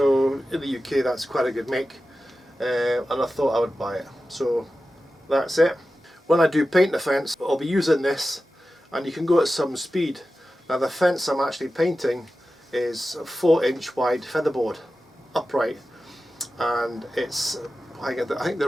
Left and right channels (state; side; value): normal; both; correlation 0.93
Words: in the UK that's quite a good make, and I thought I would buy it. So that's it. When I do paint the fence, I'll be using this, and you can go at some speed. Now the fence I'm actually painting is a 4-inch wide featherboard, upright, and it's, I think